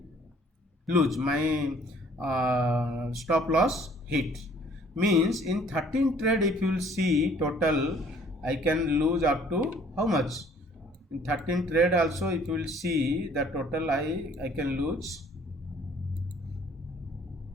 lose, my stop loss hit, means in 13 trade if you will see total I can lose up to how much. In 13 trade also if you will see the total I can lose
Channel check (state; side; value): normal; both; correlation 0.57